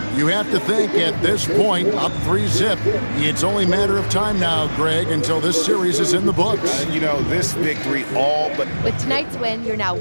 You have to think at this point, up 3-0. It's only a matter of time now, Greg, until this series is in the books. You know, this victory all but... With tonight's win, you're now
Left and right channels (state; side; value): inverted; both; correlation -1.00